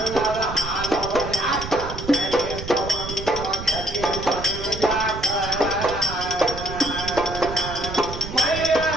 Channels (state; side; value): noise; right; rumble, 9 dB below the sound